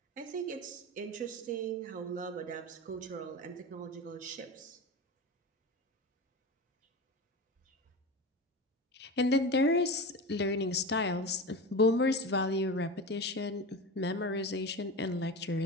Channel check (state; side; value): normal; both; correlation 0.27